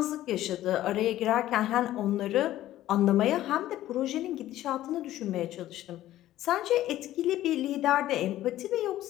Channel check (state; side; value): quieter; right; 14.1 dB